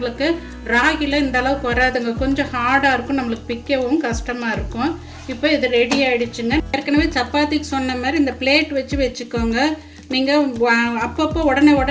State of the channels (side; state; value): both; identical; correlation 1.00